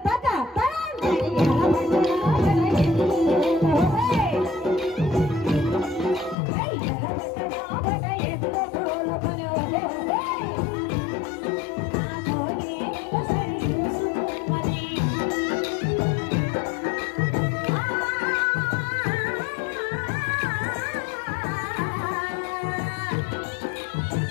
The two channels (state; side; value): drops out; right; at 6.4 s